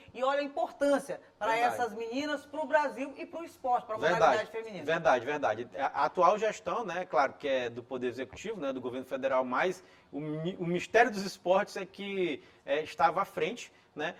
E olha a importância para essas meninas, para o Brasil e para o esporte, para a modalidade feminina. Verdade. A atual gestão, né, claro que é do Poder Executivo, né, do governo federal, mas o Ministério dos Esportes é que estava à frente, né,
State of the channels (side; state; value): both; identical; correlation 1.00